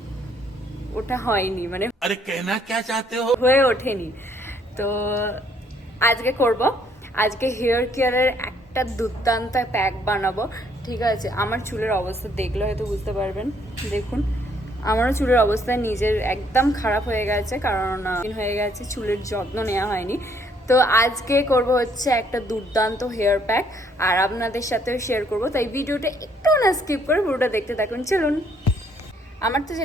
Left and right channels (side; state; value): both; normal; correlation 0.67